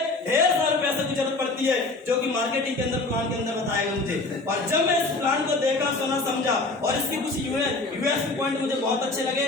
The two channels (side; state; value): right; quieter; 3.2 dB